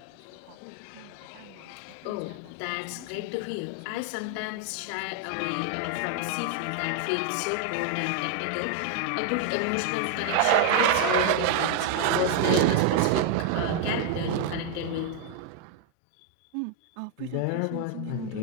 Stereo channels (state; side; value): different; both; correlation 0.00